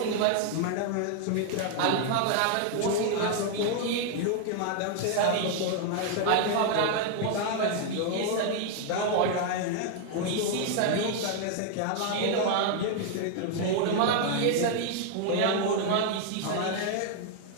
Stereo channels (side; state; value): both; different; correlation 0.00